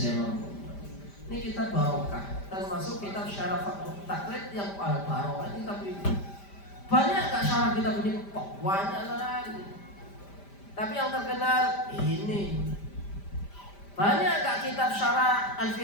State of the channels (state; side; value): late; right; 5.0 ms